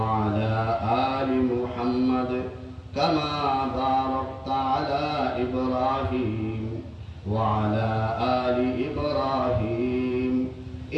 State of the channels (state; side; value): identical; both; correlation 1.00